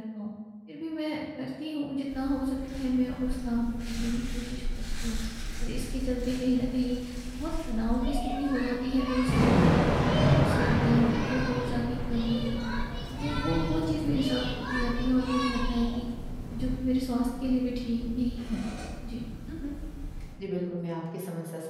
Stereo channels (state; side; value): identical; both; correlation 1.00